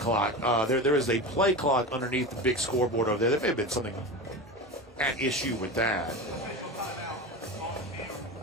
There is a play clock underneath the big scoreboard over there. There may have been something at issue with that.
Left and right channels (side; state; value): both; normal; correlation 0.25